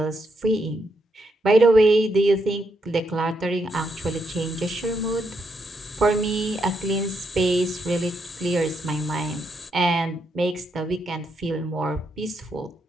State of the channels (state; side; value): normal; both; correlation 0.80